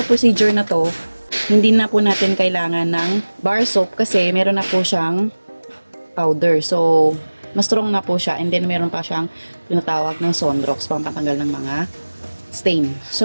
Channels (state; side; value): inverted; both; correlation -1.00